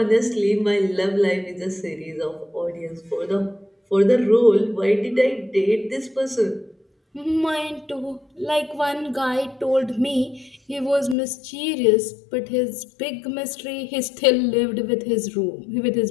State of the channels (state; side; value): drops out; right; at 11.2 s